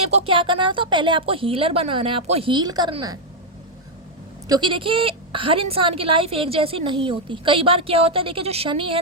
को क्या करना था, पहले आपको हीलर बनाना है, आपको हील करना है, क्योंकि देखिए हर इंसान की लाइफ एक जैसी नहीं होती। कई बार क्या होता है, देखिए जो शनि है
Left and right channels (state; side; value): normal; both; correlation 0.00